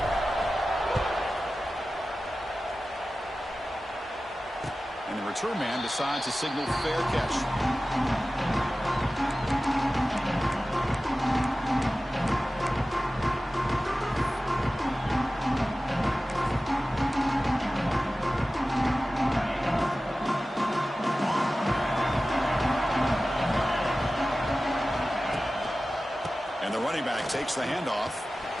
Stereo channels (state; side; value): normal; both; correlation 0.95